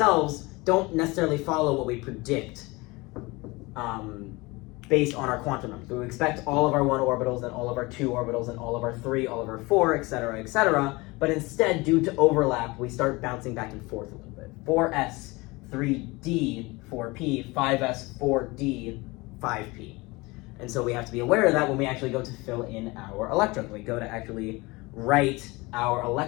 don't necessarily follow what we predict based on our quantum numbers. We expect all of our 1 orbitals and all of our 2 orbitals and all of our 3, all of our 4, etc., but instead, due to overlap, we start bouncing back and forth a little bit. 4s, 3d, 4p, 5s, 4d, 5p. And so we have to be aware of that when we actually go to fill in our electrons. We go to actually write our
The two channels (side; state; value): right; quieter; 23.6 dB